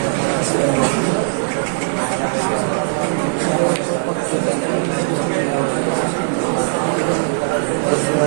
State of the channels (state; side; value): silent; left; digital silence